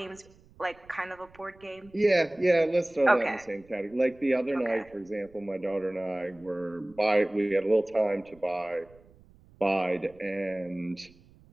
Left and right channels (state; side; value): noise; right; rumble, 27 dB below the sound